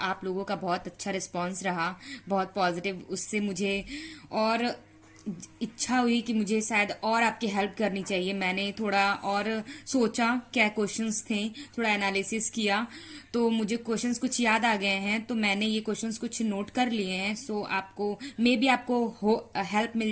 आप लोगों का बहुत अच्छा रिस्पांस रहा, बहुत पॉजिटिव। उससे मुझे और इच्छा हुई कि मुझे शायद और आपकी हेल्प करनी चाहिए। मैंने थोड़ा और सोचा क्या क्वेश्चंस थे, थोड़ा एनालिसिस किया तो मुझे क्वेश्चंस कुछ याद आ गए हैं, तो मैंने ये क्वेश्चंस कुछ नोट कर लिए हैं। आपको मे बी आपको हेल्प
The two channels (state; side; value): identical; both; correlation 1.00